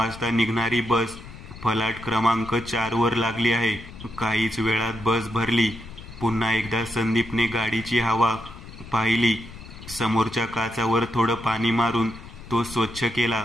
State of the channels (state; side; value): noise; left; rumble, 15 dB below the sound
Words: निघणारी बस फलाट क्रमांक 4 वर लागली आहे. काहीच वेळात बस भरली. पुन्हा एकदा संदीपने गाडीची हवा पाहिली. समोरच्या काचावर थोडं पाणी मारून तो स्वच्छ